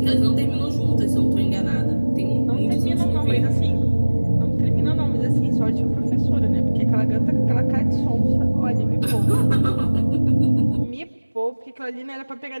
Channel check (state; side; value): inverted; both; correlation -1.00